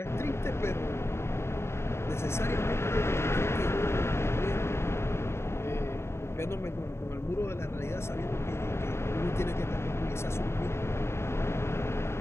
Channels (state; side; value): late; right; 0.12 ms